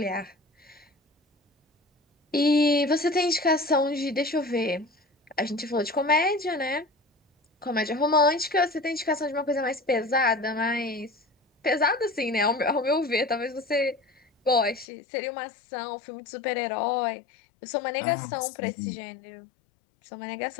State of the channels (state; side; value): drops out; right; at 14.9 s